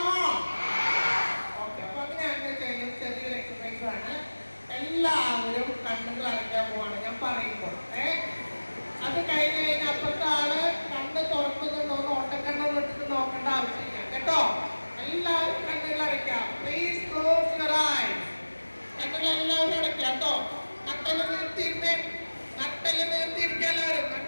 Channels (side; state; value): both; inverted; correlation -1.00